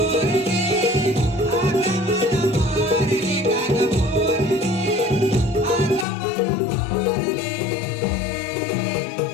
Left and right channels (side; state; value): right; drops out; at 6.1 s